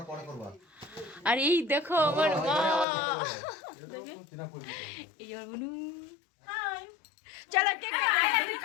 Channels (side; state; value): right; drops out; at 2.9 s